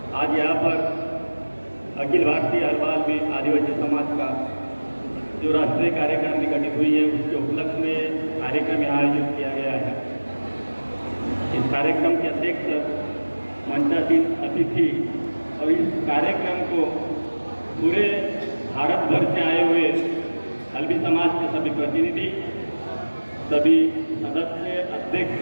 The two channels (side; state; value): both; inverted; correlation -1.00